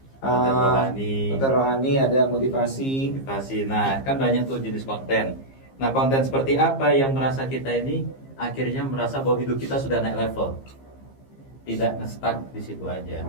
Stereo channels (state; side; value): late; right; 15 ms